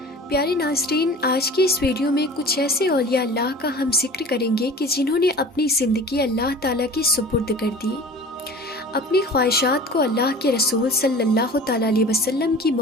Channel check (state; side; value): normal; both; correlation 0.41